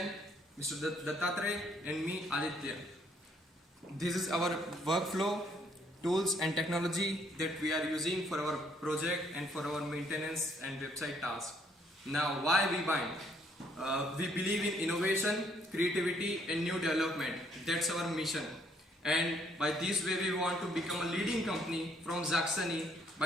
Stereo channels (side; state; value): both; normal; correlation 0.67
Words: Mr. DATTATREYA and me, ADITYA. This is our workflow, tools and technology that we are using for our project and for our maintenance and website tasks. Now, why WEBIND? We believe in innovation, creativity and new development. That's our mission. And by this way we want to become a leading company from Saxony